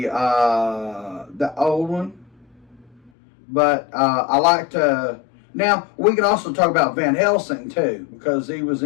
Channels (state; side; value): drops out; right; at 3.1 s